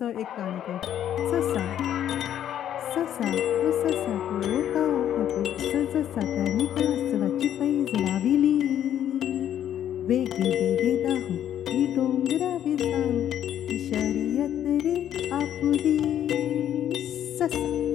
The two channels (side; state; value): right; quieter; 10.5 dB